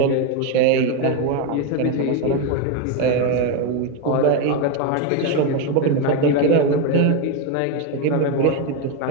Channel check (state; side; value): different; both; correlation 0.03